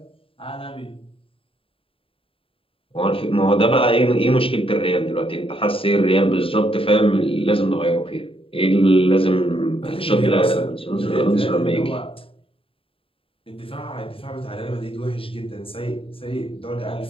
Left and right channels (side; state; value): right; late; 0.27 ms